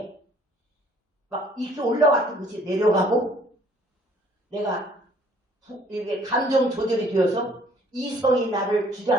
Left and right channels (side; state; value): both; normal; correlation 0.59